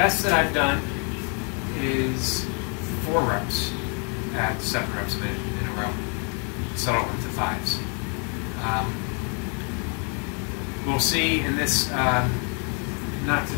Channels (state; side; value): quieter; right; 38.9 dB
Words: that I've done is 4 reps at 7 reps a minute in a row, settle into 5s. We'll see in this, not